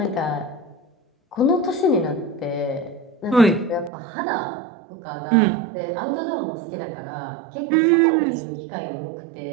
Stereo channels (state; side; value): drops out; left; at 3.9 s